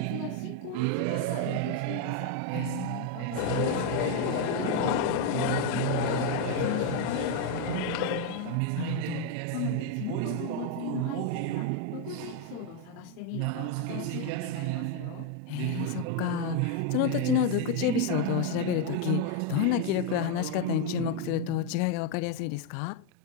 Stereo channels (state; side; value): different; both; correlation 0.02